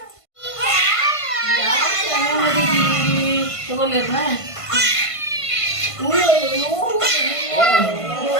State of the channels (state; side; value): late; right; 1.5 ms